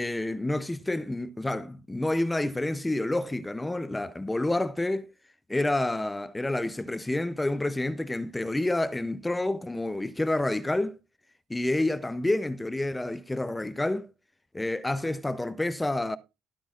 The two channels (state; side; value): normal; both; correlation 0.98